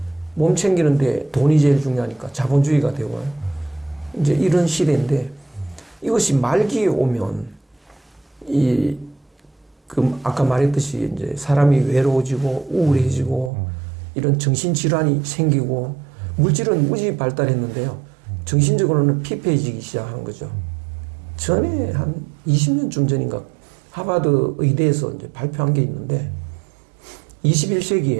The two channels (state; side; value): drops out; left; at 13.5 s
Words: 몸 챙기는데 돈이 제일 중요하니까 자본주의가 되고요. 이제 이런 시대인데 이것이 말기에 오면 이 그 아까 말했듯이 이제 사람이 외로워지고 우울해지고 이런 정신질환이 생기고 물질은 무지 발달했는데요. 정신적으로는 피폐해지기 시작하는 거죠. 전에 한 20년쯤 전인가 하버드 의대에서 이제 발표한 게 있는데